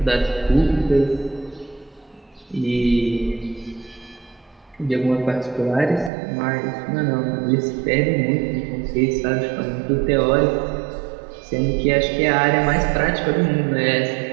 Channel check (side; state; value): left; drops out; at 6.1 s